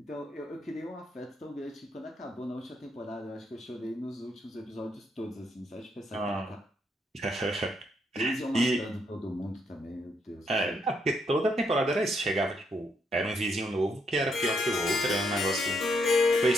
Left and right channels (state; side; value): normal; both; correlation 0.75